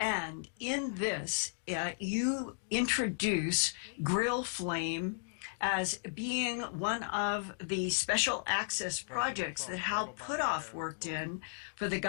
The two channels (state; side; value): silent; right; digital silence